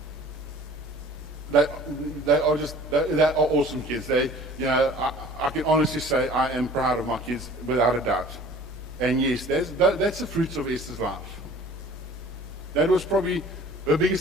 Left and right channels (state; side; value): noise; left; hum, 22 dB below the sound